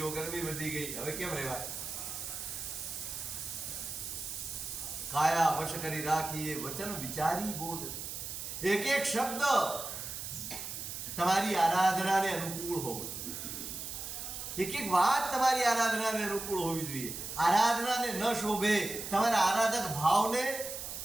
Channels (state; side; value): noise; right; hiss, 7 dB below the sound